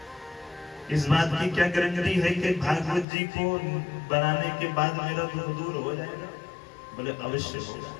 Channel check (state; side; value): drops out; right; at 3.1 s